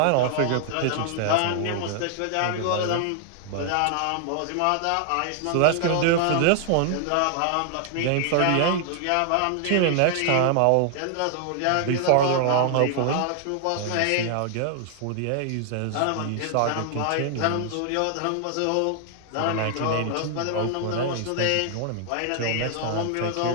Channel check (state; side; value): different; both; correlation 0.00